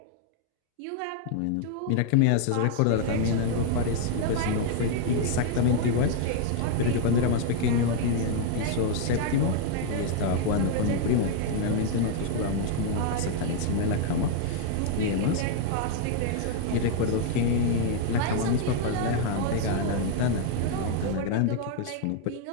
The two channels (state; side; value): different; both; correlation 0.00